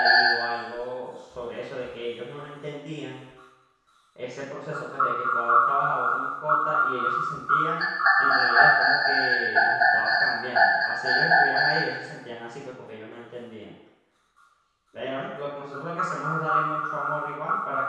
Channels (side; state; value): both; identical; correlation 1.00